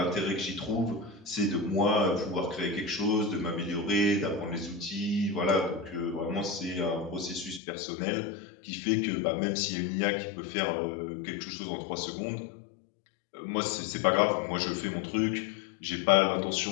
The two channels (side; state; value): right; drops out; at 7.6 s